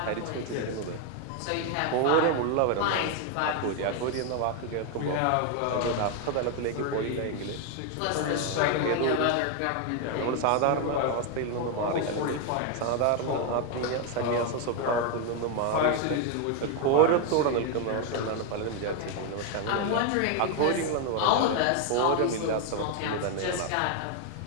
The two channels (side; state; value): both; different; correlation 0.01